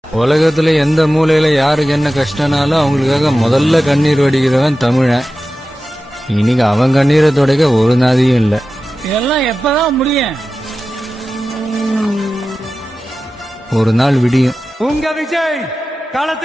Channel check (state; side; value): normal; both; correlation 0.94